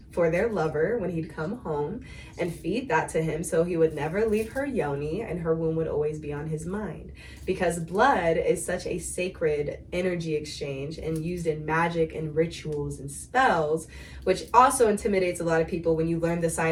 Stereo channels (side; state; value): both; identical; correlation 1.00